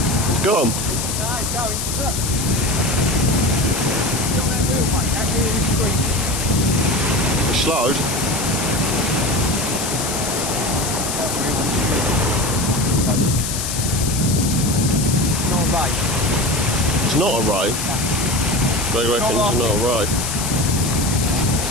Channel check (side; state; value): left; noise; hiss, 4 dB below the sound